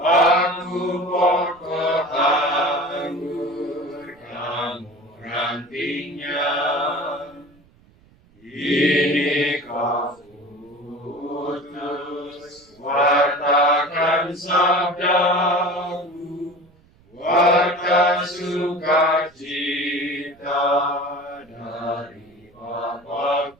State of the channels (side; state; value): right; noise; rumble, 30 dB below the sound